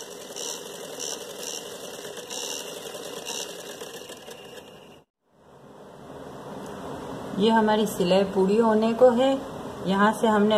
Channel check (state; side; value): identical; both; correlation 1.00